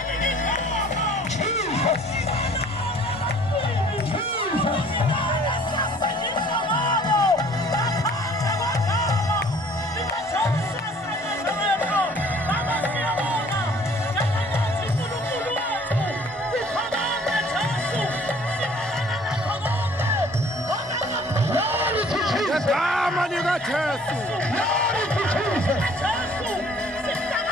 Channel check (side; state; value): both; normal; correlation 0.55